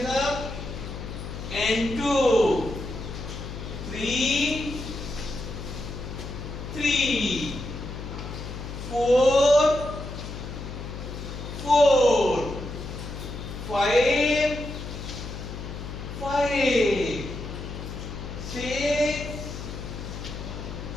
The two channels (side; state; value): left; noise; hum, 8 dB below the sound